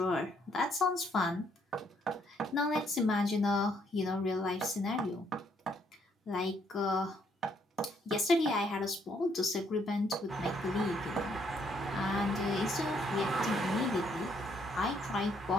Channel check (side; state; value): both; normal; correlation 0.70